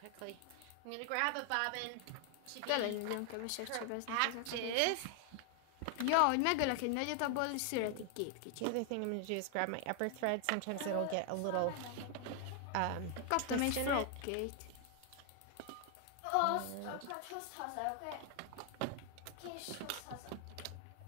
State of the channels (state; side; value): different; both; correlation 0.00